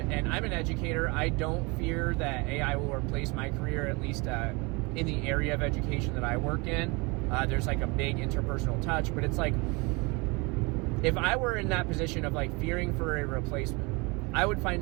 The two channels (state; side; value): quieter; left; 27.5 dB